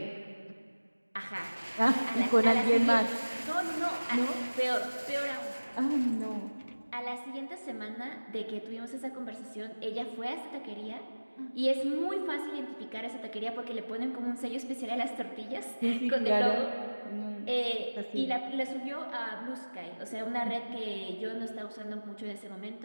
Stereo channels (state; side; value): inverted; both; correlation -1.00